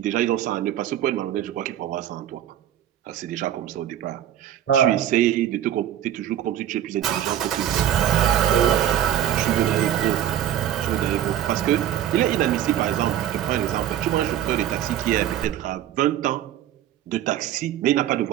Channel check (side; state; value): left; quieter; 11.3 dB